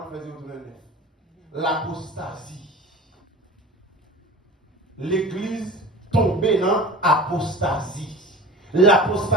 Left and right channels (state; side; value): normal; both; correlation 0.37